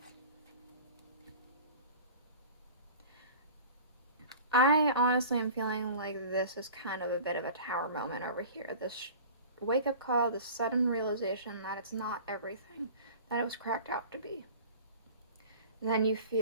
I honestly am feeling like this is kind of a bit of a Tower moment over here. This wake-up call, this sudden realization that it's not everything that it was cracked out to be. And then you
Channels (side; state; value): both; inverted; correlation -0.41